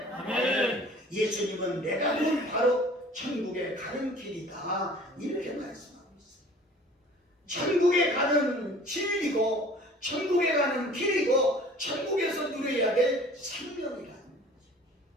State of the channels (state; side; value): normal; both; correlation 0.48